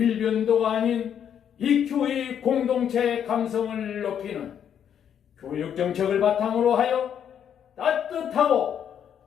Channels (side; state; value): right; quieter; 8.8 dB